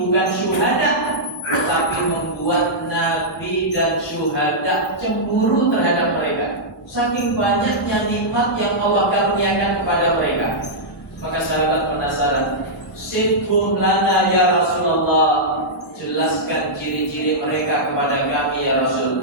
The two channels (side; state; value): both; normal; correlation -0.10